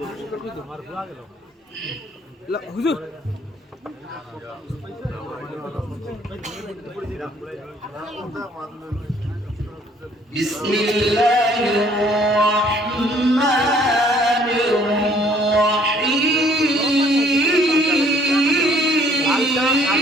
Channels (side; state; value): both; normal; correlation 0.60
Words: করে মার ভুয়া গেল হুজুর বিসমিল্লাহির রহমানির